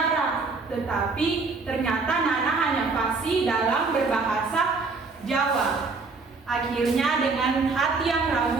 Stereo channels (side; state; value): left; quieter; 4.1 dB